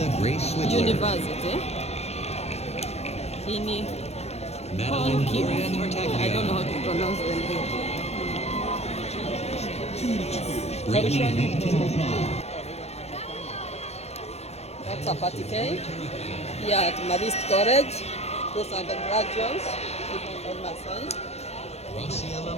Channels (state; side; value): late; right; 0.31 ms